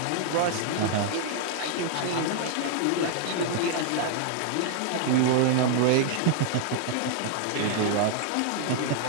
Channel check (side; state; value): both; different; correlation -0.01